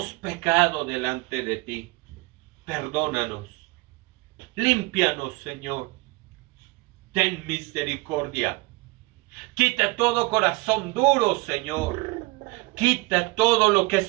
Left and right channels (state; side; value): quieter; left; 24.5 dB